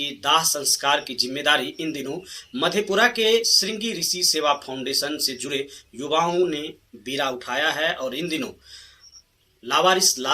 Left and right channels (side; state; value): both; identical; correlation 1.00